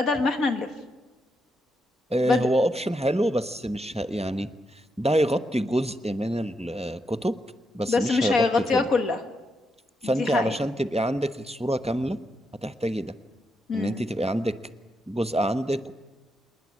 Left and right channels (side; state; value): both; normal; correlation 0.82